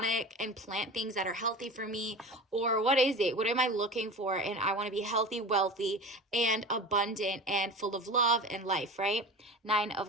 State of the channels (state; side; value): normal; both; correlation 0.33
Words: and plant things that are healthy for me? Or what is it? What am I looking for? And I want to be healthy, wealthy, and abundant, and full of love and life, right? 9